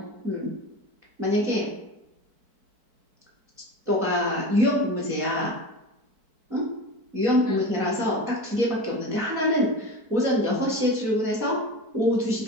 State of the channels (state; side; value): late; left; 4.6 ms